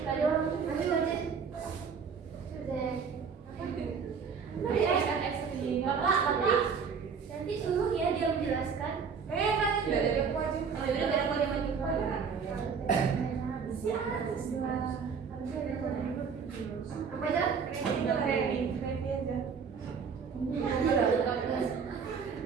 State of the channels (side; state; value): left; quieter; 6.0 dB